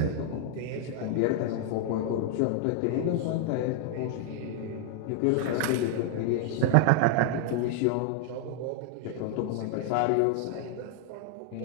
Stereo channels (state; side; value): different; both; correlation 0.00